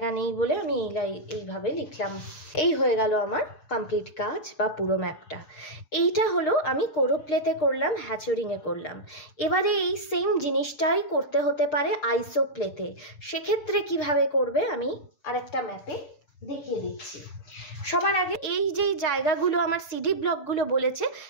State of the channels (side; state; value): right; late; 6.5 ms